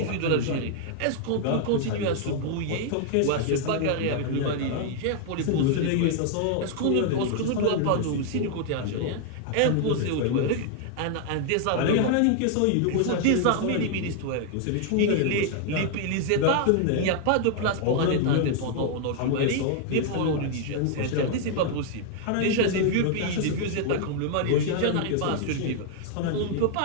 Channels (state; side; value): different; both; correlation 0.00